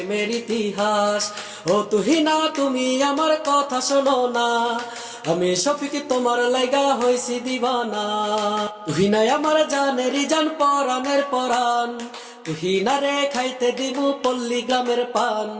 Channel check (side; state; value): both; identical; correlation 1.00